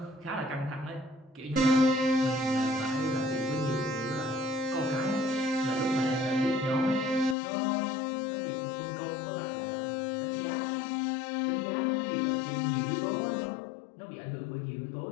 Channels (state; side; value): drops out; right; at 7.4 s